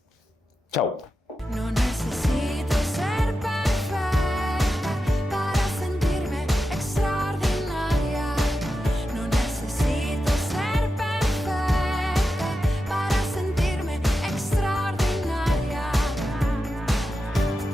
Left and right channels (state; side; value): normal; both; correlation 0.90